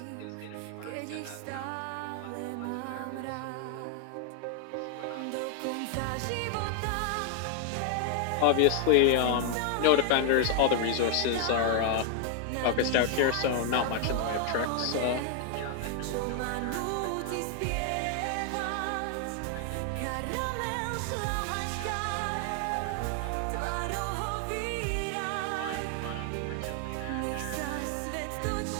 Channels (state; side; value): different; both; correlation 0.00